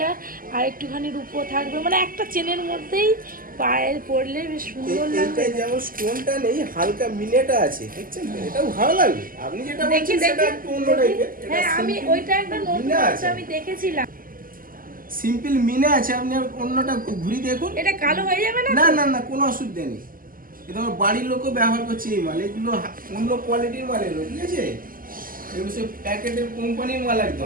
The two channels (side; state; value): left; late; 0.41 ms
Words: আর একটুখানি রূপো থাকবে মানে একটা চেনের মধ্যেই পায়ে পরলে বেশ সুন্দর লাগবে এটা যেমন স্টোনটা নেই হালকা মিনেটা আছে দেখছেন তো? এটাও ভালো লাগবে আপনি যেটা বলছেন সেটা একটু অন্য টাইপের হ্যাঁ আমি ওইটা একটা নতুন মিনা আছে আছে। আমি দেখেছিলাম সিম্পল মিনে আছে আপনি আর অন্যটা ঘুরি দেখুন এটা কালো হয়ে যাবে না না না না কোনো অসুবিধা নেই এটা আমার বাড়ির লোকও ব্যবহার করছে এই মাল এগুলো অন্য কোয়ালিটির মাল এগুলো ঠিক আছে এগুলো সব প্যাকেটের কোম্পানির মাল